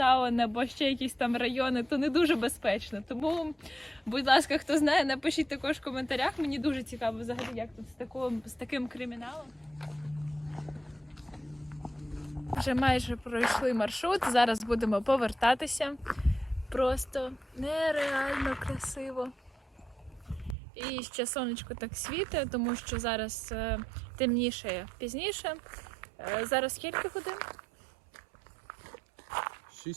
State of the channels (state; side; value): drops out; left; at 20.6 s